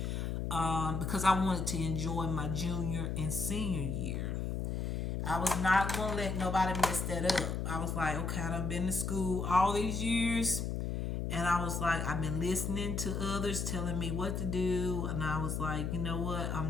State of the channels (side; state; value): left; noise; hum, 1 dB below the sound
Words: Because I wanted to enjoy my junior and senior year. I was not going to let nobody mess that up. I was like, okay, I've been to school all these years. And I was like, I've been listening to others telling me what to do. And I was like, you know what?